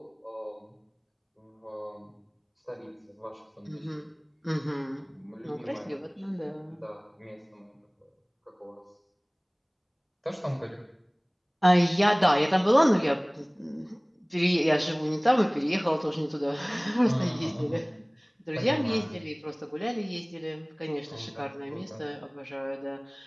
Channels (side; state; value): both; identical; correlation 1.00